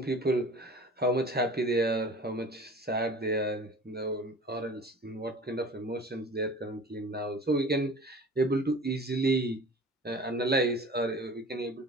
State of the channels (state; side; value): normal; both; correlation 0.42